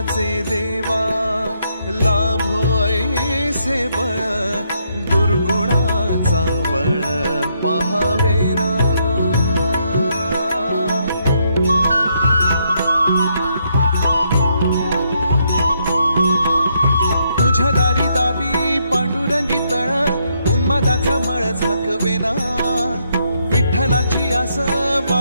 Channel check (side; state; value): both; inverted; correlation -0.75